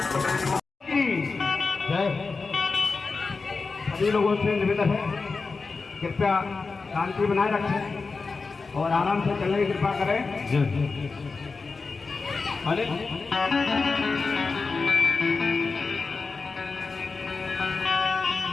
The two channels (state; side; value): quieter; right; 4.3 dB